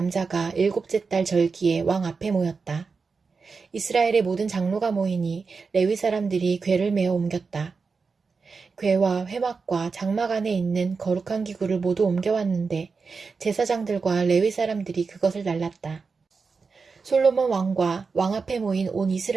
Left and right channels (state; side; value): quieter; left; 4.8 dB